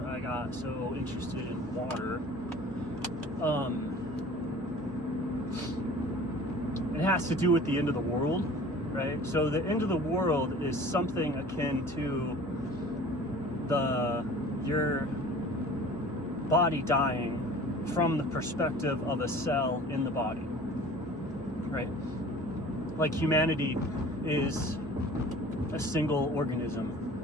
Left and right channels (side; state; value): left; noise; hum, 22 dB below the sound